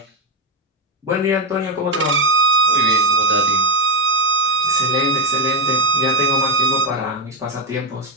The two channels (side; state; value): both; normal; correlation 0.08